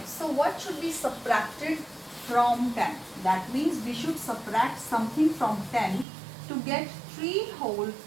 So what should be subtracted from 10? That means we should subtract something from 10 to get 3 whole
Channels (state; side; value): drops out; left; at 6.1 s